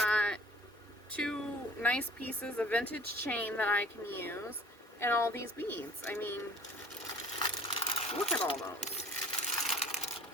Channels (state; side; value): normal; both; correlation 0.50